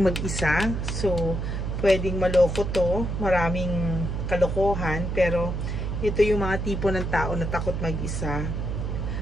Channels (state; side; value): noise; right; hum, 2 dB below the sound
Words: mag-isa. So, pwedeng maloko to. Maraming kalokohan. Pero, ito yung mga tipo ng tao na takot mag-isa.